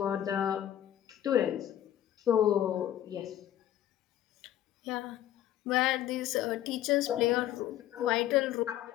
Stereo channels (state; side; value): quieter; right; 12.0 dB